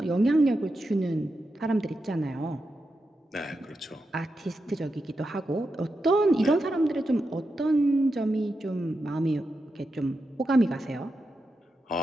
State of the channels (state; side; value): normal; both; correlation 0.88